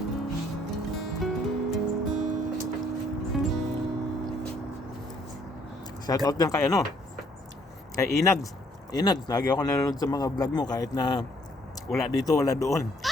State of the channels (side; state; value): both; normal; correlation 0.65